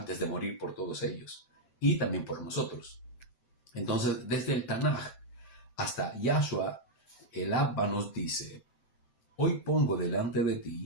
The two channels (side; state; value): right; late; 7.7 ms